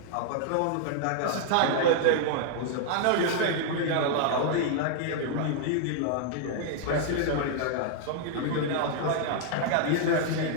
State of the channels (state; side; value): different; both; correlation 0.00